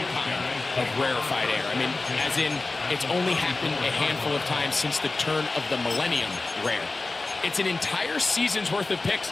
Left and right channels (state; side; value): quieter; right; 3.4 dB